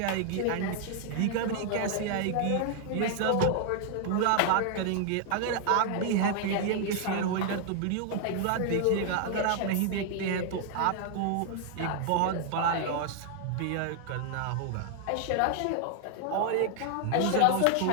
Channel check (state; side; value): different; both; correlation 0.00